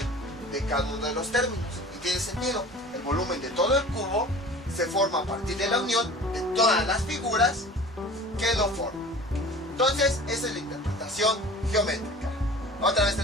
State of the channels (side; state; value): both; normal; correlation 0.41